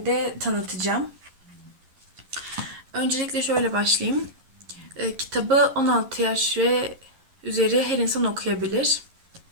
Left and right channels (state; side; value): late; left; 11 ms